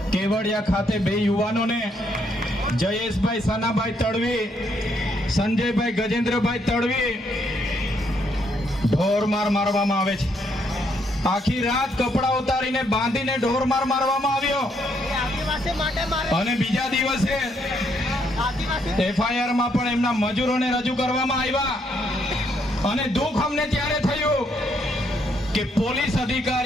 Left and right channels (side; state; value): both; normal; correlation 0.73